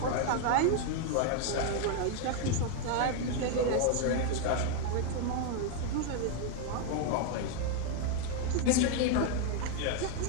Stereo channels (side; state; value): both; different; correlation 0.00